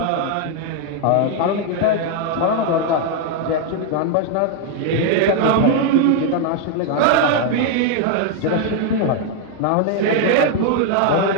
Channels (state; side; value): different; both; correlation 0.00